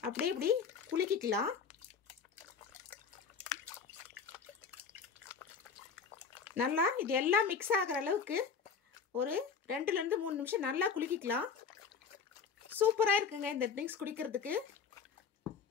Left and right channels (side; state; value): right; quieter; 6.0 dB